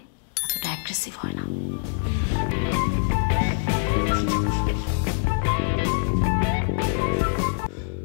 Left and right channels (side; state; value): right; silent; digital silence